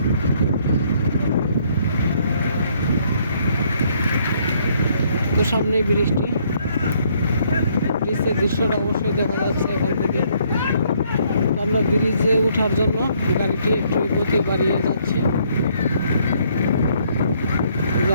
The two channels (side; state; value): both; inverted; correlation -0.67